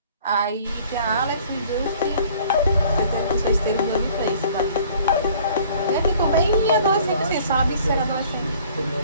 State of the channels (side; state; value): both; inverted; correlation -0.53